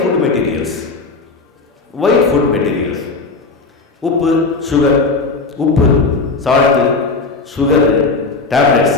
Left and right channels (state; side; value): quieter; right; 3.9 dB